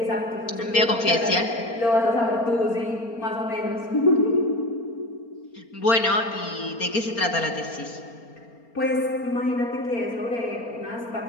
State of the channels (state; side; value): late; right; 4.3 ms